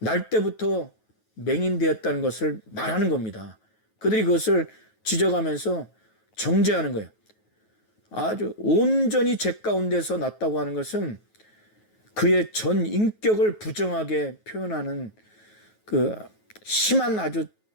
때부터 맹인되었다는 것을 말하는 겁니다. 그들이 그것을 지적하면서 정죄하는 거예요. 아주 온전히 죄 가운데서 났다고 하는 것은 그의 전 인격을 부정하게 표현하는 그 심한 아주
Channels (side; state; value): right; late; 9.3 ms